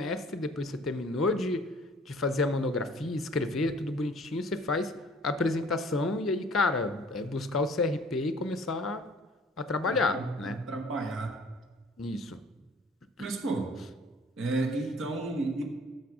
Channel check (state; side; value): normal; both; correlation 0.53